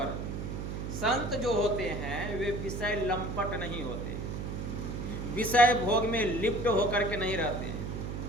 संत जो होते हैं वे विषय लंपट नहीं होते। विषय भोग में लिप्त होकर के नहीं रहते हैं।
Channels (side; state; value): right; noise; hum, 5 dB below the sound